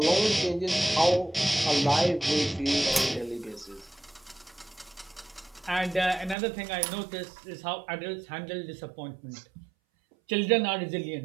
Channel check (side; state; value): left; drops out; at 6.4 s